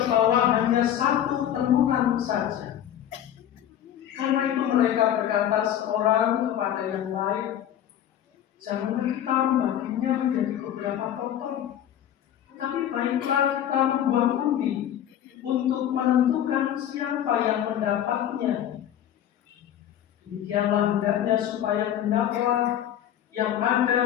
bawah hanya 1 tenunan saja. Karena itu mereka berkata seorang kepada yang lain, "Janganlah kita membaginya menjadi beberapa potong, tapi baiklah kita membuang undi untuk menentukan siapa yang mendapatnya. Demikianlah hendaknya supaya genaplah yang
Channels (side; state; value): right; quieter; 10.8 dB